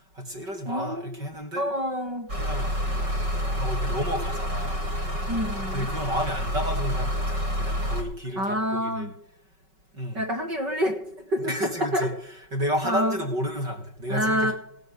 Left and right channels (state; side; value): late; left; 5.3 ms